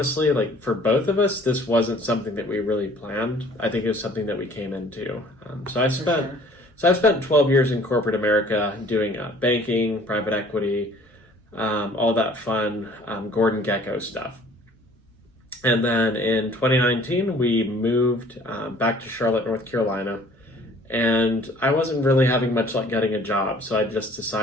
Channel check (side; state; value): both; normal; correlation 0.53